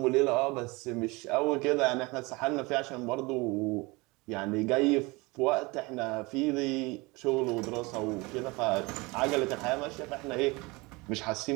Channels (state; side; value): quieter; left; 24.9 dB